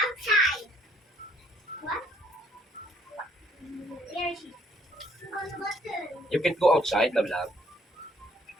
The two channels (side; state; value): both; normal; correlation 0.64